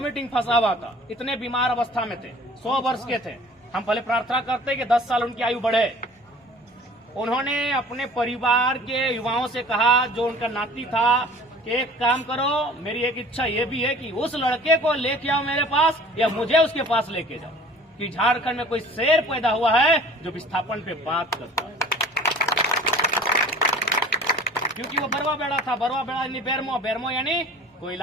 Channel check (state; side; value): normal; both; correlation 0.47